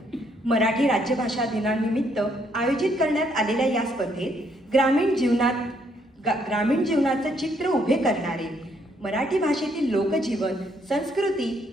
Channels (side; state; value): both; normal; correlation 0.71